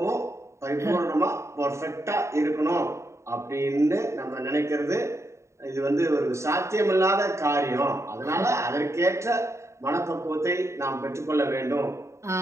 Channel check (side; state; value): left; late; 0.14 ms